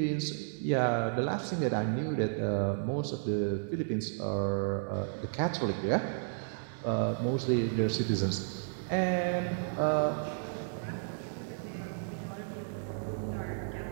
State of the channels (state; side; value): silent; left; 56 dB below the other